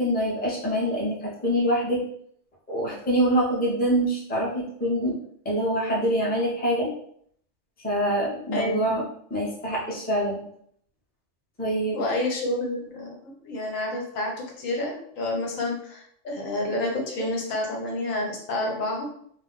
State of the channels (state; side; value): normal; both; correlation -0.09